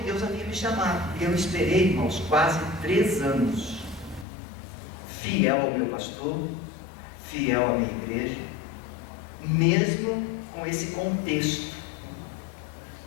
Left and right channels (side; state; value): right; drops out; at 4.2 s